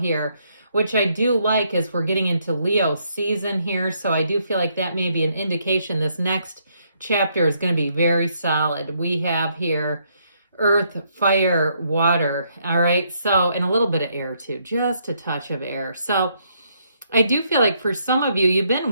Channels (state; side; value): inverted; both; correlation -0.73